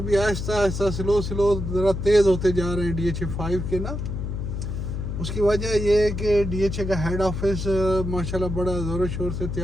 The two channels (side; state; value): left; noise; hum, 4 dB below the sound